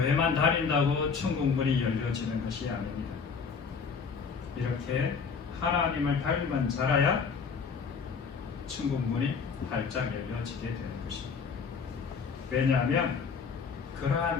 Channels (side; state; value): right; quieter; 5.7 dB